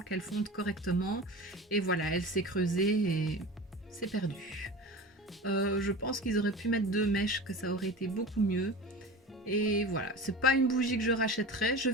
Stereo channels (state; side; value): normal; both; correlation 0.32